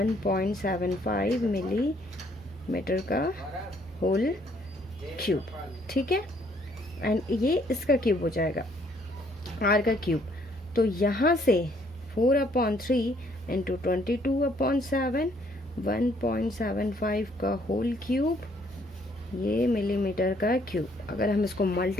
millimetre का होल क्यूब। ठीक है, एंड ये इसका क्यूब हो जाएगा आर का क्यूब। तो यहाँ से 4/3 इंटू 22/7 1.75 का होल क्यूब, ये मिलीमीटर का क्यूब। अगर हम इसको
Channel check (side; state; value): both; normal; correlation 0.66